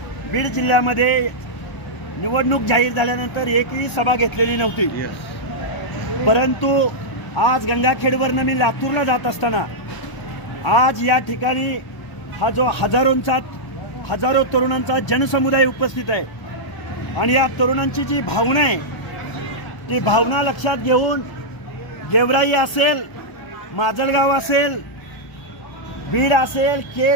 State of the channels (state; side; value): late; right; 1.0 ms